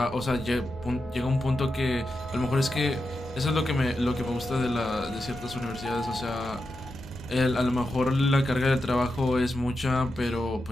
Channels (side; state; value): both; normal; correlation 0.88